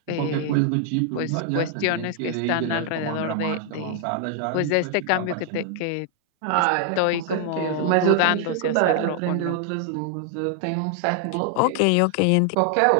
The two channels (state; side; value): different; both; correlation 0.00